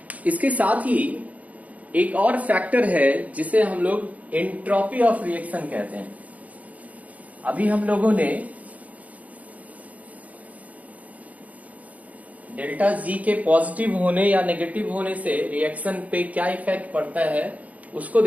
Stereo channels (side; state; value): left; late; 0.077 ms